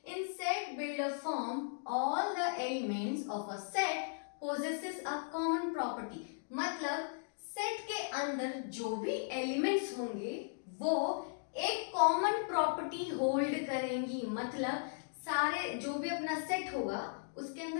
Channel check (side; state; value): right; silent; digital silence